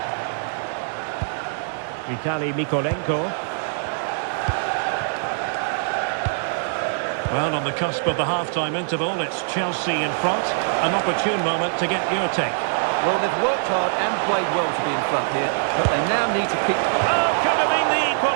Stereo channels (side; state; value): left; silent; digital silence